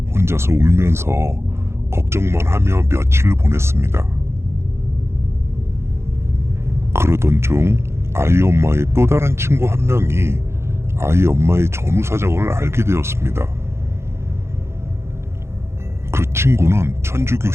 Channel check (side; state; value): left; late; 0.13 ms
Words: 혼자서 울면서 걱정만 하며 며칠을 보냈습니다. 그러던 중 아이 엄마의 또 다른 친구 한 명이 아이 엄마의 전후 사정을 알게 되었습니다. 친구는 천주교